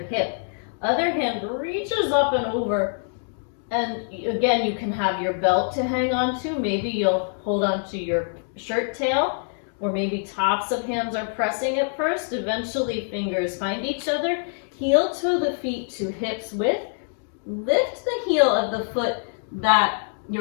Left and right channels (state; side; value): silent; right; 62 dB below the other